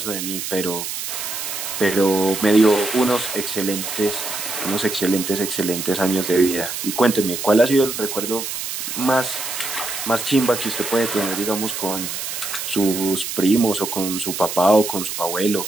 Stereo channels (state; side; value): noise; right; hiss, 5 dB below the sound